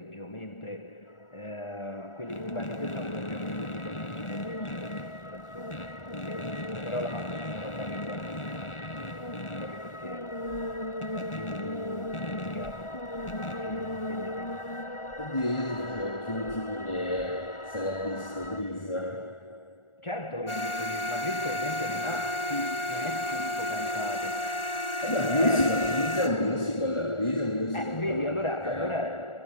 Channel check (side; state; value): right; late; 1.4 ms